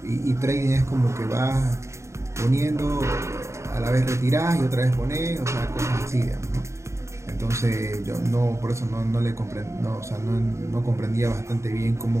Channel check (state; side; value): late; left; 0.14 ms